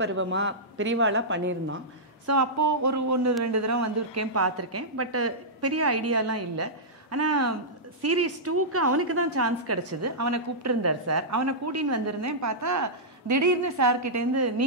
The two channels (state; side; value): normal; both; correlation -0.13